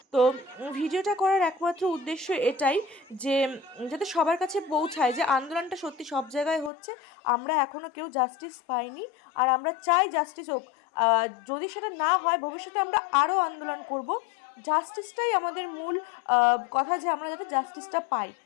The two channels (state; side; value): drops out; right; at 6.7 s